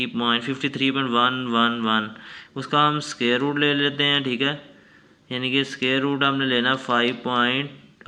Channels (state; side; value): identical; both; correlation 1.00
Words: उसका हम स्क्वायर रूट ले लेते हैं, ठीक है, यानी कि स्क्वायर रूट हमने लेना